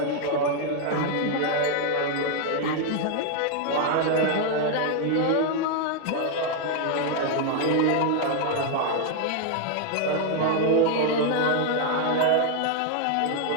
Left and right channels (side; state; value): both; different; correlation 0.00